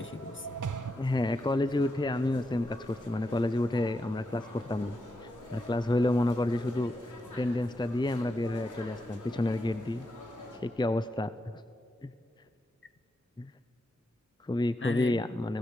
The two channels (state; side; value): normal; both; correlation 0.85